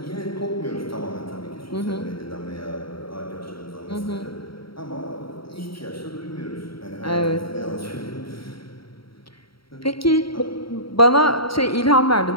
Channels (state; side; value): late; right; 0.74 ms